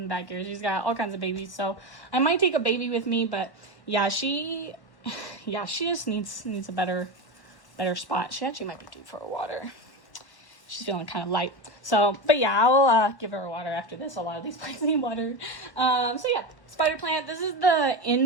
the back here. She's got all kinds of babies, so I might take a baby with me. But yeah, she just needs a better spot. She actually might be due for a water. She's feeling kind of light. So, but yeah, I'll give her water after this. A lot of these plants need water. So yeah, spider plant. This is the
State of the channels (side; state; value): right; late; 1.0 ms